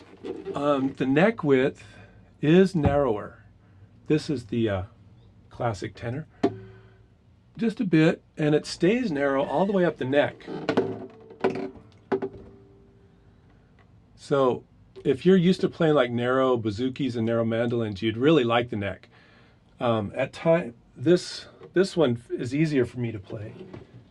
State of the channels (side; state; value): both; identical; correlation 1.00